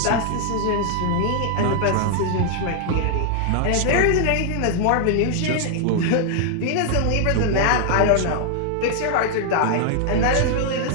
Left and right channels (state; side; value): different; both; correlation 0.00